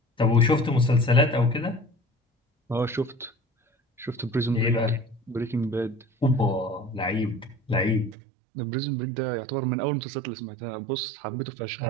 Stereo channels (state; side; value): drops out; left; at 8.2 s